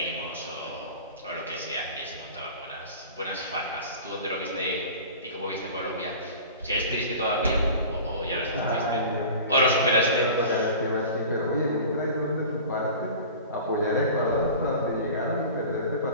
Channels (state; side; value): inverted; both; correlation -0.37